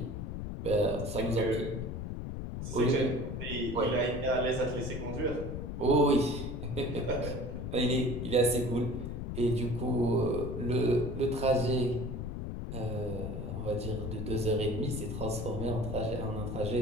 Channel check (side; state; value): left; noise; rumble, 5 dB below the sound